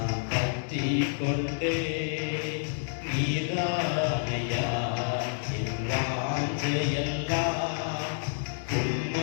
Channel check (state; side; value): silent; right; digital silence